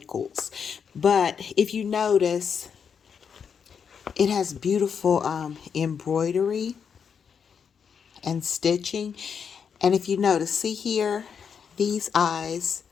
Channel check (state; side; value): quieter; right; 6.9 dB